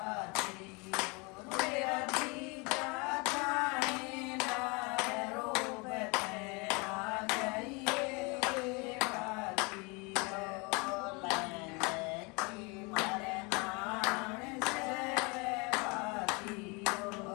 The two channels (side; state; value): right; quieter; 29.2 dB